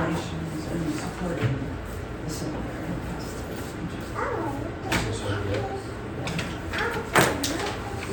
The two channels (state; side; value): identical; both; correlation 1.00